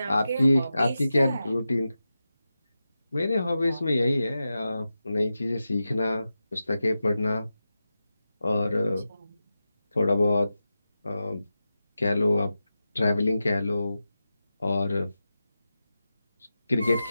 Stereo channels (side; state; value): both; inverted; correlation -0.91